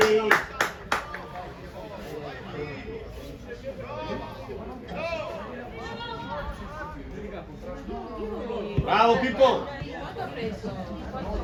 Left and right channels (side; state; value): both; identical; correlation 1.00